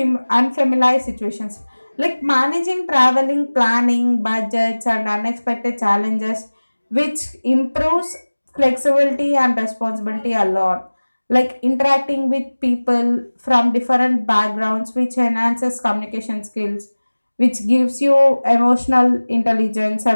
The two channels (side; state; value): both; inverted; correlation -1.00